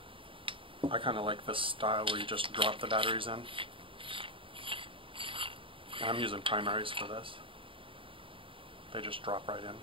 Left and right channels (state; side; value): late; left; 0.25 ms